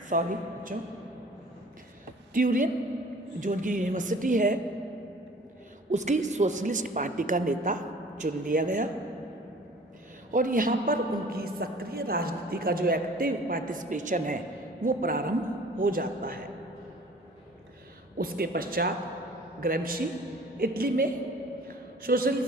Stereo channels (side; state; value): both; normal; correlation 0.48